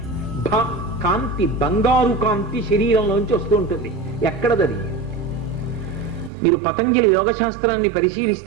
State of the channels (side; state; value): left; drops out; at 6.3 s